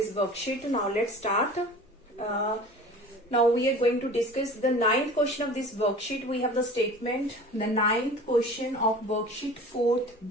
worksheet. Now let's start. Now we are going to discuss the ninth question of this worksheet. We have the statement, the ninth question of worksheet 4th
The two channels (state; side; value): normal; both; correlation 0.41